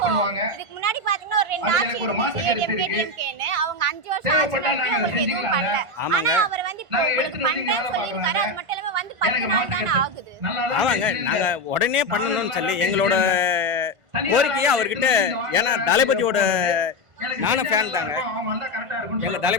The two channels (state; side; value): late; left; 1.5 ms